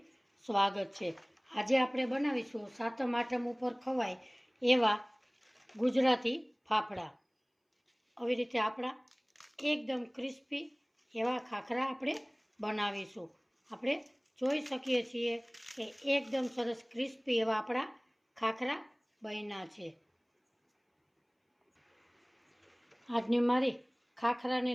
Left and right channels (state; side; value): identical; both; correlation 1.00